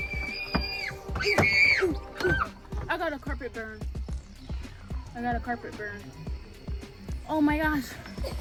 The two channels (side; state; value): both; identical; correlation 1.00